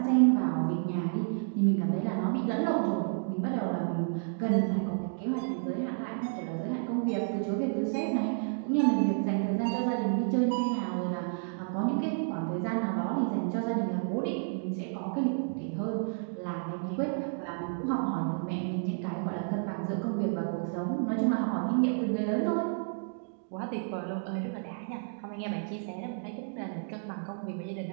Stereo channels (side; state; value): left; silent; digital silence